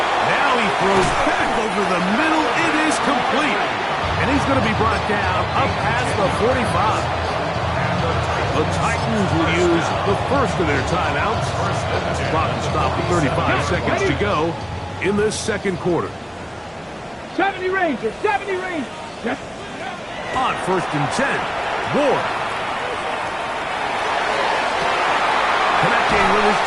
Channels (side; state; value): both; identical; correlation 1.00